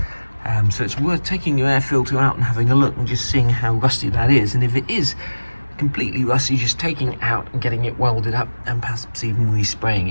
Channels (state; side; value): inverted; both; correlation -1.00